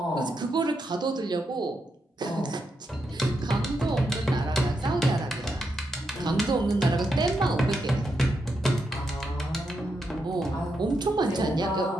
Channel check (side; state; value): both; normal; correlation 0.83